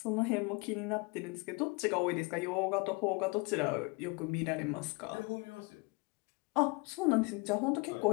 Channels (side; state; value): right; quieter; 28.3 dB